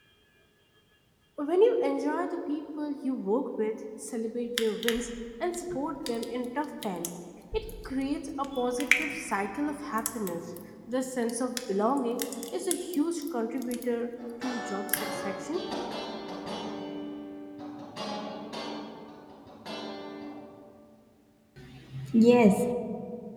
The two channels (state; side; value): identical; both; correlation 1.00